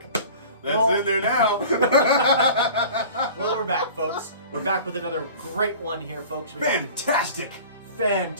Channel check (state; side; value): inverted; both; correlation -0.42